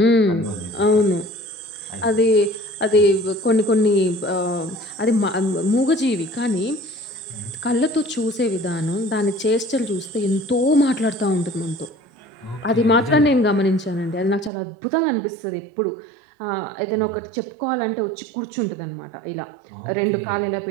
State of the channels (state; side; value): drops out; left; at 14.5 s